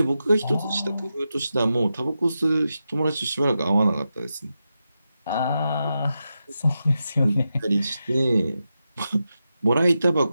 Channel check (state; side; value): inverted; both; correlation -0.89